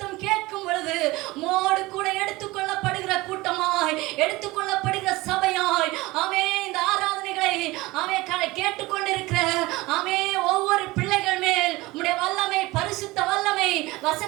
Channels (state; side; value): quieter; left; 20.7 dB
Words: கேட்கும் பொழுது மோடு கூட எடுத்துக்கொள்ளப்படுகிற கூட்டமாய், எடுத்துக்கொள்ளப்படுகிற சபையாய் ஆமே இந்த ஆராதனைகளை ஆமே கேட்டுக்கொண்டிருக்கிற ஆமே ஒவ்வொரு பிள்ளைகள் மேல் உம்முடைய வல்லமை, பரிசுத்த வல்லமை